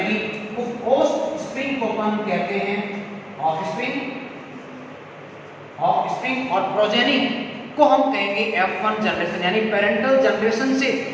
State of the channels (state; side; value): identical; both; correlation 1.00